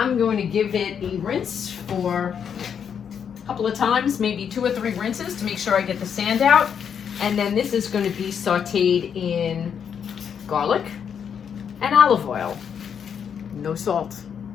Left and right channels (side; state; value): right; quieter; 7.6 dB